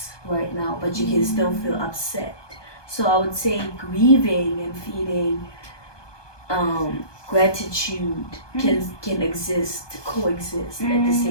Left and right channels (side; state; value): right; late; 1.2 ms